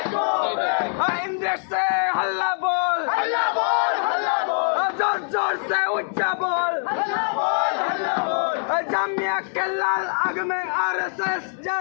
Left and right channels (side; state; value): right; silent; 63 dB below the other